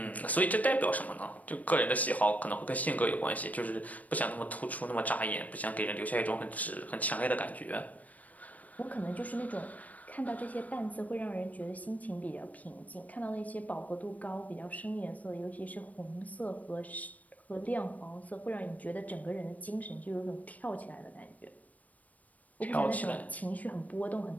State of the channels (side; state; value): right; late; 0.073 ms